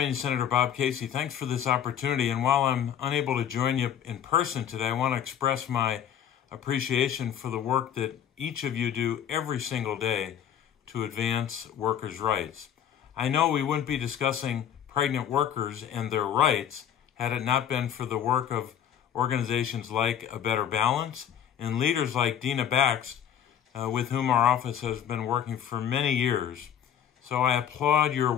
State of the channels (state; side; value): quieter; right; 9.4 dB